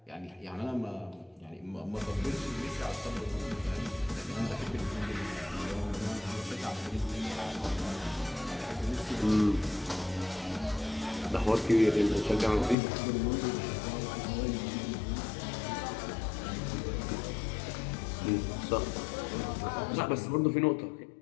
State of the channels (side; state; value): right; drops out; at 12.8 s